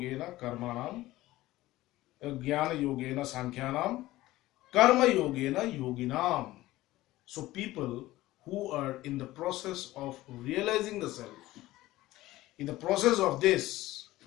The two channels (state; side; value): quieter; right; 17.0 dB